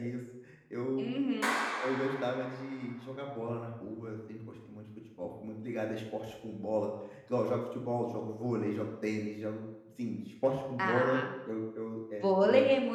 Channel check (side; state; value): both; identical; correlation 1.00